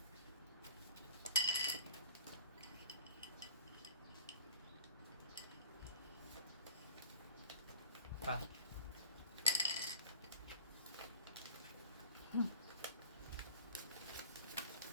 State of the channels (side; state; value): both; inverted; correlation -0.46